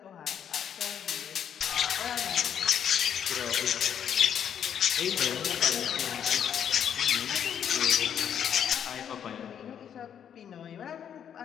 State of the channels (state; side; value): quieter; right; 8.8 dB